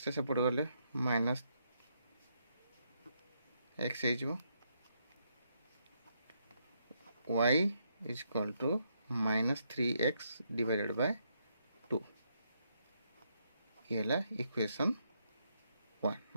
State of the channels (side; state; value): both; inverted; correlation -0.77